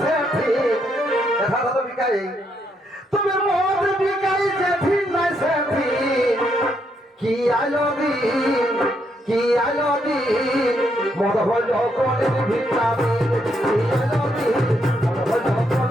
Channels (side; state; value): both; normal; correlation 0.76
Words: সে ঠিক, দেখা তো বিকাই। তবে মদ বিকাই যে ঠিক নাই সে ঠিক, কি আলো দিন, কি আলো দিন, মদ হল কলির ভিটামিন। কি আলো দিন, মদ হল